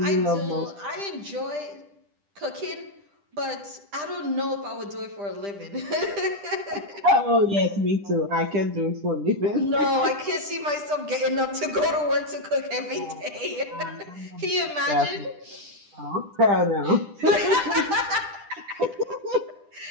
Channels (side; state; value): left; late; 10 ms